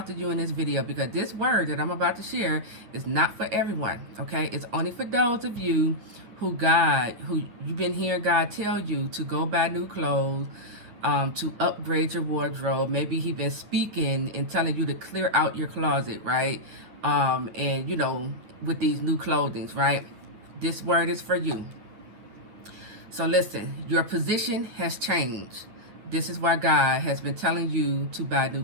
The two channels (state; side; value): late; left; 9.6 ms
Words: to you in this video because this word that I'm about to share is not for everyone, okay? It's only for those of you who you've been hearing God tell you to go buy new clothes, to upgrade your wardrobe. Maybe He's been speaking and telling you to clear out your closet, right? And with these new clothings, right? This word is for you. So listen, your position has changed. This is why God has been telling you to buy new